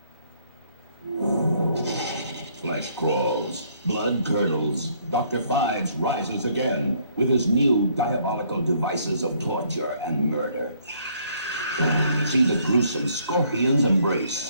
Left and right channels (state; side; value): inverted; both; correlation -0.66